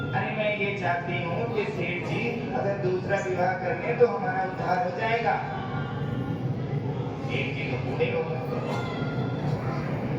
अरे मैं ये चाहती हूँ कि सेठ जी अगर दूसरा विवाह कर ले तो हमारा उद्धार हो जाएगा। सेठ जी तो बूढ़े हो गए।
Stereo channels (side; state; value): both; identical; correlation 1.00